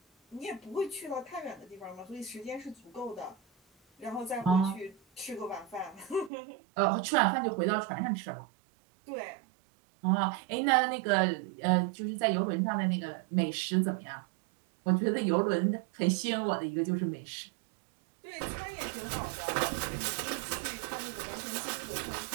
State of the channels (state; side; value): drops out; left; at 6.3 s